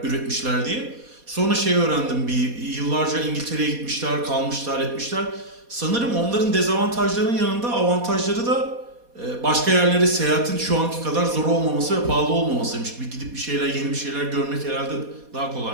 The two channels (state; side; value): late; left; 4.2 ms